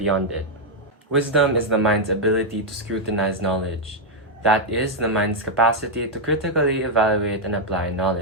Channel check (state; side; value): normal; both; correlation -0.01